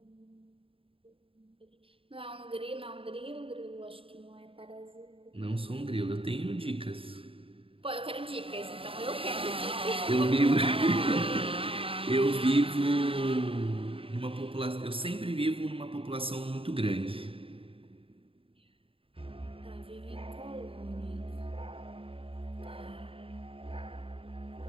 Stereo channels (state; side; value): late; left; 0.27 ms